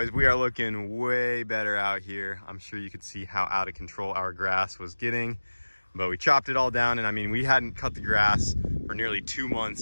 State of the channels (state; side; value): inverted; both; correlation -1.00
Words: we are looking way better out here. I'm sure you could see how out of control our grass was getting, but we chopped it all down. And I mean, we hadn't cut the grass for nearly 2